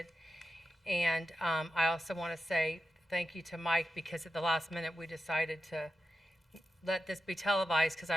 And I also want to say thank you to Mike, because at the last minute we decided to let this be televised because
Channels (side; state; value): both; normal; correlation 0.90